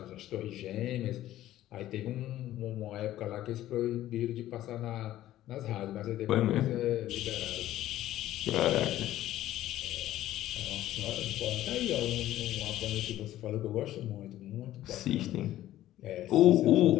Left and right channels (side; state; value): right; quieter; 13.9 dB